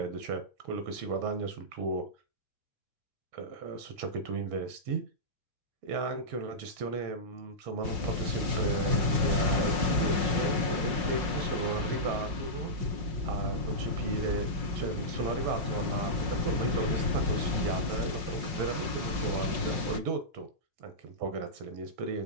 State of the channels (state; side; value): late; left; 5.6 ms